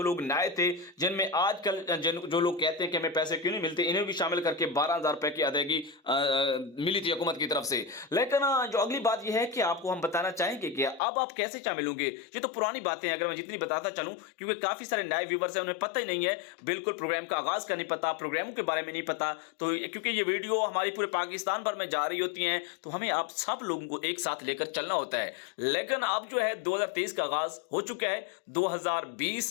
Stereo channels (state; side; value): drops out; right; at 11.0 s